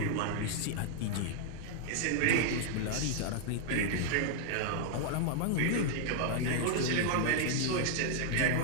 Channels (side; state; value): both; different; correlation 0.00